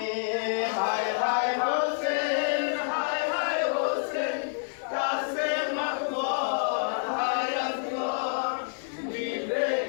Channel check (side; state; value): right; silent; digital silence